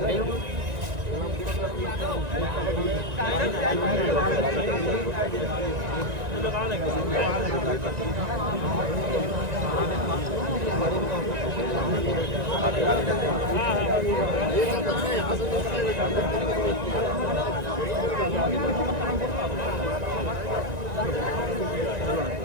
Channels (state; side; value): late; left; 1.9 ms